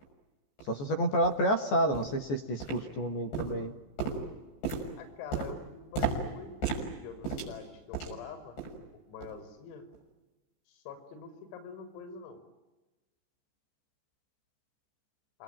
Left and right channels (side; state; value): right; late; 14 ms